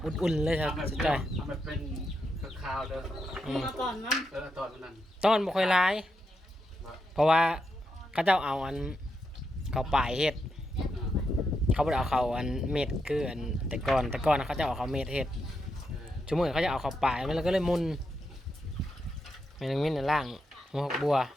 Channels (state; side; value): normal; both; correlation 0.84